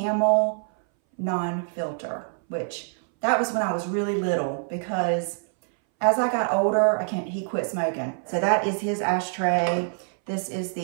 non-filter, which that was when I was really little, because as I got older, he quit smoking. So that is his ashtray. This is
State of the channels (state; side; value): silent; left; 60 dB below the other